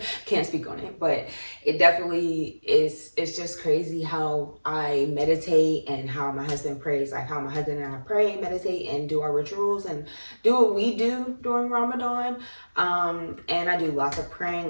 can't speak on it, but it definitely is. It's just crazy how I meditate and how my husband prays, like how my husband and I pray, meditate, and do our rituals and do what we do during Ramadan. And I do lots of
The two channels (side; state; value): both; inverted; correlation -1.00